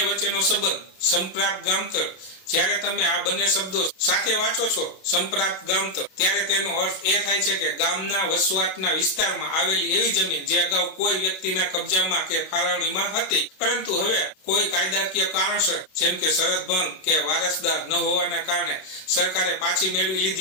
વચ્ચેનો સંબંધ સંપ્રાપ્ત ગામતળ. જ્યારે તમે આ બંને શબ્દો સાથે વાંચો છો, સંપ્રાપ્ત ગામતળ, ત્યારે તેનો અર્થ એ થાય છે કે ગામના વસવાટના વિસ્તારમાં આવેલી એવી જમીન જે અગાઉ કોઈ વ્યક્તિના કબજામાં કે ફાળવણીમાં હતી, પરંતુ હવે કોઈ કાયદાકીય કારણસર જેમ કે શરત ભંગ કે વારસદાર ન હોવાના કારણે સરકારે પાછી મેળવી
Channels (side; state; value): right; late; 32 ms